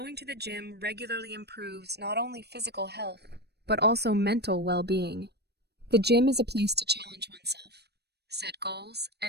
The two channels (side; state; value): left; late; 0.48 ms